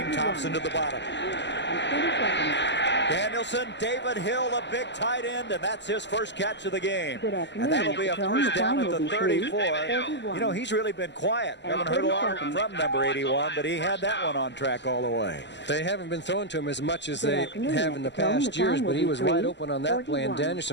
Thompson to the bottom. Danielson, David Hill, a big tight end, and that's his first catch of the game. And that'll be a first down at the 34. You know, he's really been quiet. Haven't heard a lot from number 81, but he had that one on track all the way. They haven't been throwing to him as much as they have in the past years, but he was wide open on that play, and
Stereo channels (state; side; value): late; right; 0.51 ms